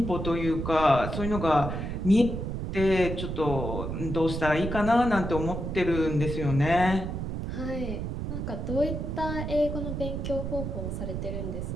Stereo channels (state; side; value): noise; right; rumble, 4 dB below the sound